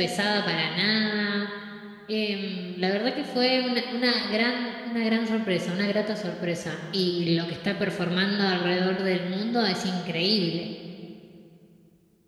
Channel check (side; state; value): both; identical; correlation 1.00